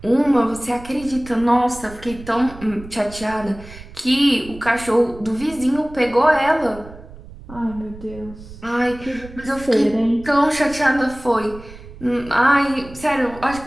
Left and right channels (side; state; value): right; noise; rumble, 17 dB below the sound